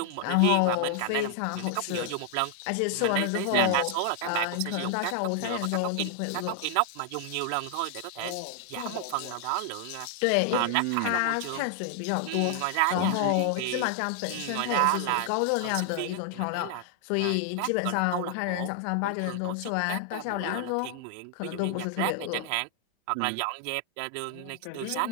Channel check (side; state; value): both; different; correlation 0.00